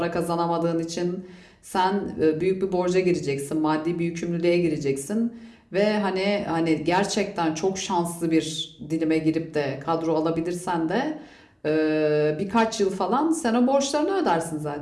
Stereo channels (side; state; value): both; identical; correlation 1.00